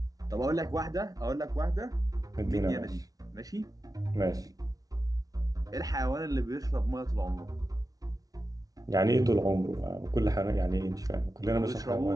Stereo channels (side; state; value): left; late; 0.18 ms